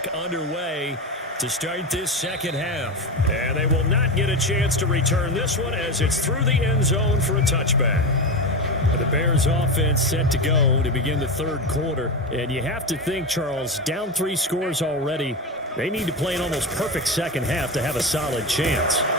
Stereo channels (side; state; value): both; normal; correlation 0.19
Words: underway to start this second half. And they will not get a chance to return this one as it's through the end zone for a touchback. The Bears offense set to go to begin the third quarter. And you have to think, Charles, down 3 scores already. They need to play an almost perfect second half to have a solid chance.